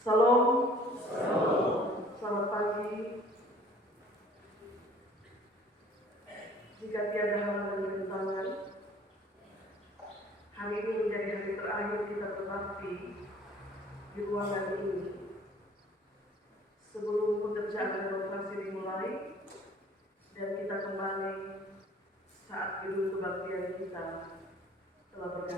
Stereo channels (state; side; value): normal; both; correlation 0.53